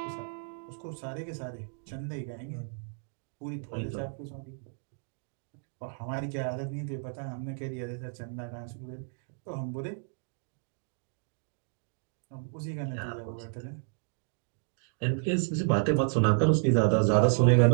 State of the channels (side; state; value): left; silent; 57 dB below the other